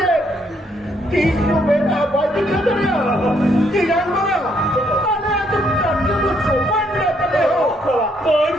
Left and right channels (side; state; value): both; normal; correlation 0.71